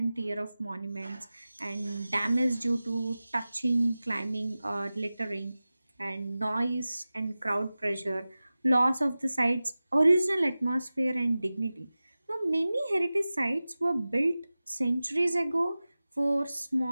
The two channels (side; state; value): both; inverted; correlation -0.96